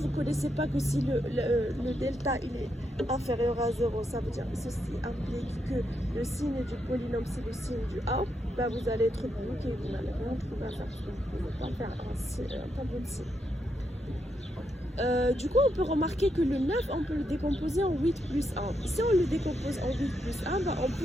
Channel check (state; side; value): normal; both; correlation 0.81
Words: ne connaissez pas que si le delta il est inférieur à 0, ça veut dire que ceci implique que le signe du polynôme c'est le signe du A, bah vous allez être bloqué, vous n'allez rien trouver à faire, vous ne pouvez pas faire un tableau de signe. Du coup, on peut remarquer que le 9, on peut le décomposer en 8 plus 1. Si on le décompose en 8 plus 1, bah, on